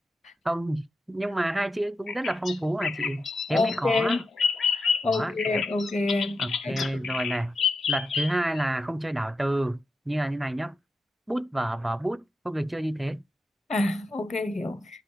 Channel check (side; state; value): both; normal; correlation 0.88